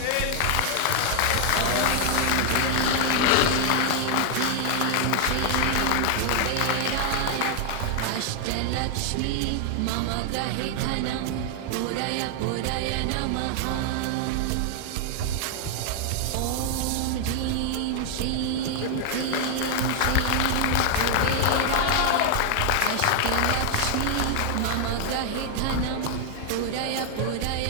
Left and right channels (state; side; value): different; both; correlation 0.00